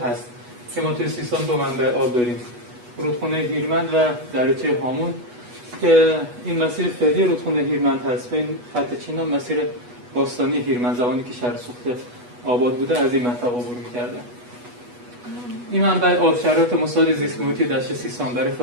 هست که ما توی سیستان دو منبع آب داریم، رودخونه هیرمند و دریاچه هامون، که این مسیر فعلی رودخونه هیرمند هست. این خط چینا مسیر باستانی هیرمند، زمانی که شهر سوخته آباد بوده از این منطقه عبور می‌کرده. این منبع آب شرایط مساعد زیست محیطی دشت سیستان برای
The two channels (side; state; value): left; late; 8.2 ms